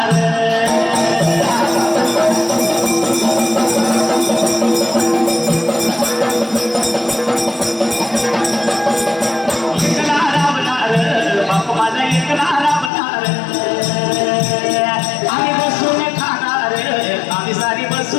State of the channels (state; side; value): drops out; right; at 12.9 s